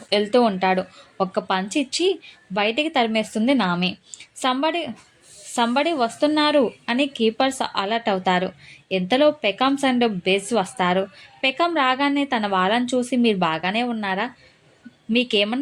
వెళ్తూ ఉంటాడు. ఒక్క పంచి ఇచ్చి బయటికి తరిమేస్తుంది నామి. సంబడి వస్తున్నారు అని కీపర్స్ అలర్ట్ అవుతారు. ఇంతలో పెకామ్స్ అండ్ బెజ్ వస్తారు. పెకామ్ రాగానే తన వాళ్ళని చూసి మీరు బాగానే ఉన్నారా,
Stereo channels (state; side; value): identical; both; correlation 1.00